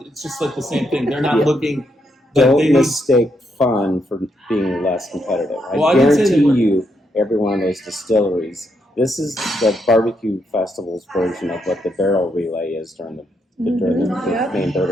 It's just like the same thing. They're not Yeah. looking. don't mistake fun for being less competitive. Well, I I didn't say that guarantee we're- you, every one of those distilleries, this is the barbecue festival's version of what the barrel relay is during the Yep. main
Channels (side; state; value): both; normal; correlation 0.78